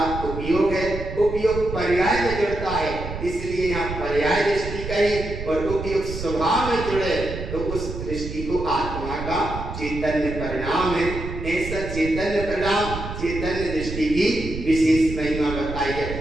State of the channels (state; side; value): noise; right; rumble, 8 dB below the sound